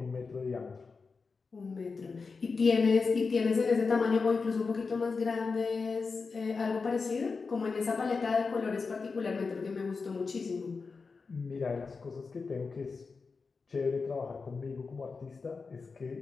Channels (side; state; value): right; quieter; 4.6 dB